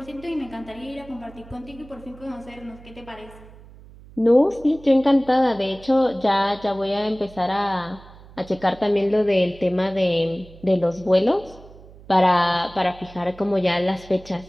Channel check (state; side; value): noise; right; hum, 21 dB below the sound